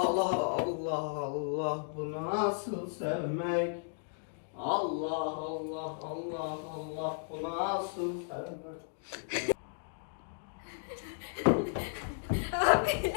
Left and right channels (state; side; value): silent; right; digital silence